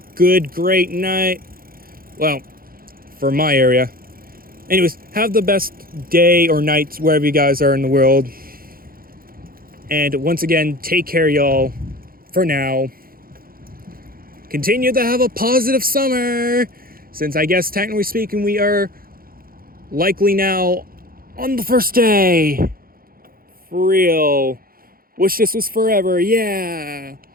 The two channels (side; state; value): left; late; 0.42 ms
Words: great night. Well, for my area. Anyways, have the best day or night wherever you guys are in the world. And once again, take care, y'all, for now. Continue to have a positive summer, since I guess technically speaking we are likely now on the first day. For real. Wish this was forever, yeah.